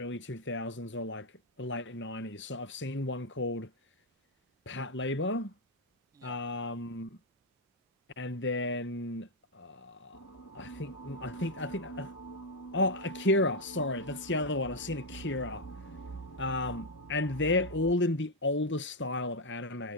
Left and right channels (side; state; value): both; normal; correlation 0.01